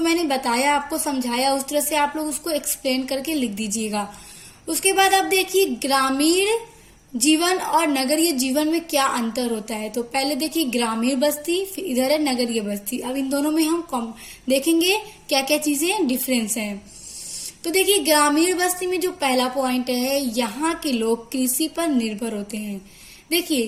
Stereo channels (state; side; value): identical; both; correlation 1.00